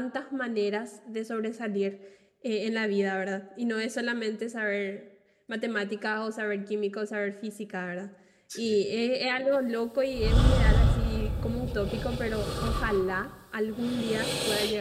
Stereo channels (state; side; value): identical; both; correlation 1.00